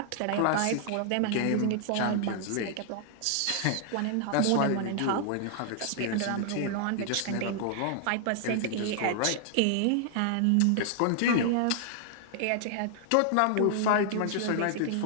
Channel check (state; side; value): different; both; correlation -0.01